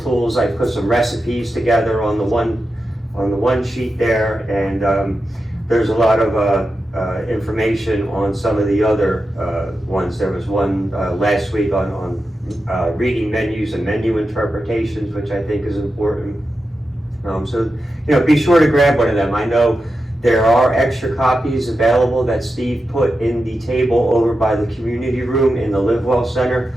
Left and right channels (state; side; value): normal; both; correlation 0.90